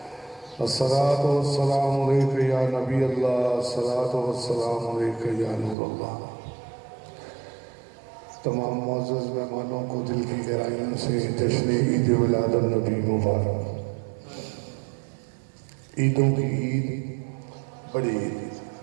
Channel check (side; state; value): left; drops out; at 5.8 s